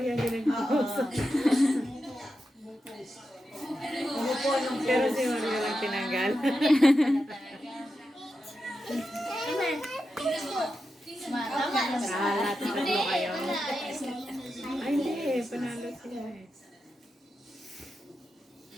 din Oo. Umupo nung Pero si Marian lang tinanggal. Lahat tatlo kayo. Ay, hindi. Panalo sila eh.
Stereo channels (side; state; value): both; normal; correlation 0.89